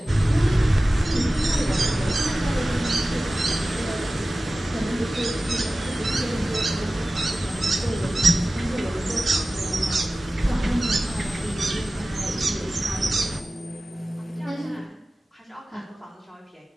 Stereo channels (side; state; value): both; normal; correlation 0.96